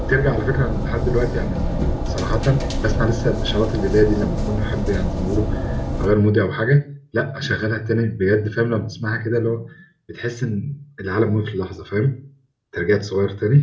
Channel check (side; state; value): both; identical; correlation 1.00